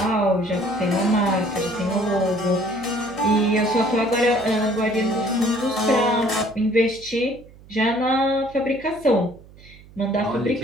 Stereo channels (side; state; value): right; noise; hum, 22 dB below the sound